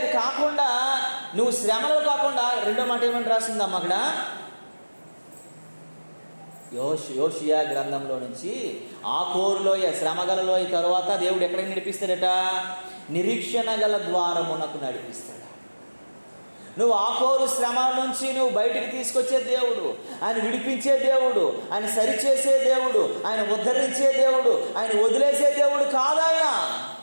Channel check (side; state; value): both; inverted; correlation -1.00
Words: కాకుండా, నువ్వు శ్రమలో కాకుండా, రెండో మాట ఏమని రాసిందమ్మ అక్కడ, యోషియా గ్రంథంలో నుంచి ఆకోరులోయ, శ్రమగలలోయ తరువాత దేవుడు ఎక్కడికి నడిపిస్తాడట, నిరీక్షణ గల ద్వారమునకు నడిపిస్తాడు. నువ్వు ఆకోరు శ్రమ నుంచి నువ్వు బయటికి తీసుకొచ్చే దేవుడు, ఆయన విడిపించే దేవుడు, ఆయన సరిచేసే దేవుడు, ఆయన ఉద్ధరించే దేవుడు, ఆయన వదిలేసే దేవుడు కాదాయన.